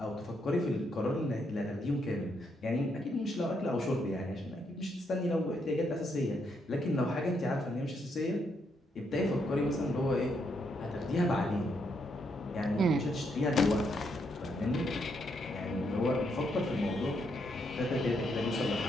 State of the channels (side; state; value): both; normal; correlation 0.77